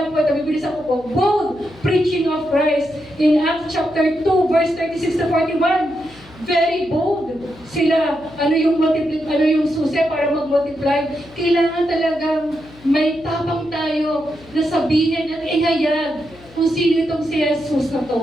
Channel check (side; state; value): left; noise; hum, 23 dB below the sound